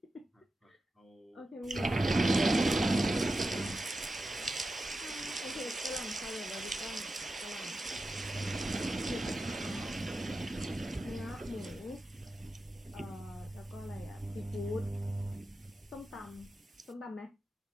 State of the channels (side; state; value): both; normal; correlation 0.91